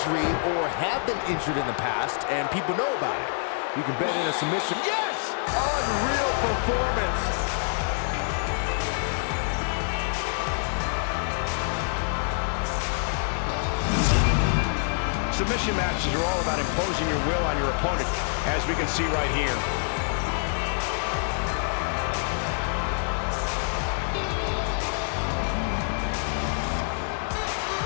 or have been injured in the past and people know about it. You can bet in a submission. Yes! Unreal performance. Submission matches are all about imposing your will on your opponent, as we can see right here.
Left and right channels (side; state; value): right; silent; 61 dB below the other